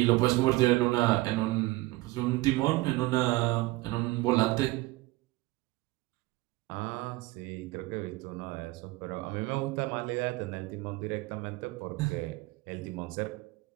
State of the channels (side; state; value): left; quieter; 20.6 dB